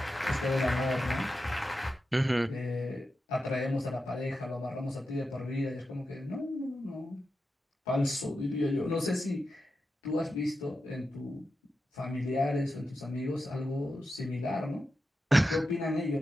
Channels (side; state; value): both; normal; correlation 0.90